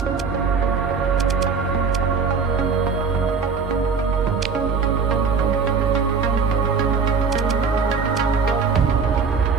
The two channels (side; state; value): left; quieter; 5.3 dB